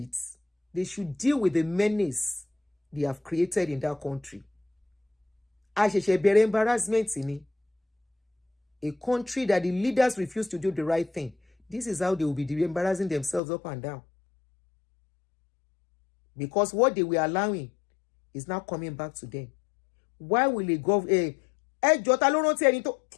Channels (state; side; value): drops out; right; at 13.4 s